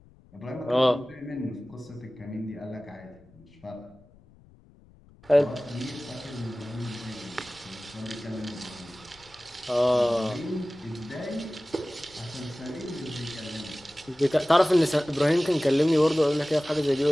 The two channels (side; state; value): left; noise; rumble, 26 dB below the sound